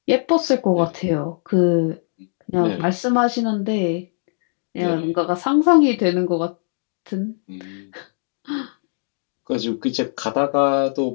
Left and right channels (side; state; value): right; silent; digital silence